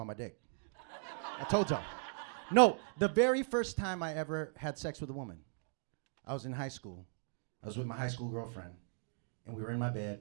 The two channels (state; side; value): silent; left; digital silence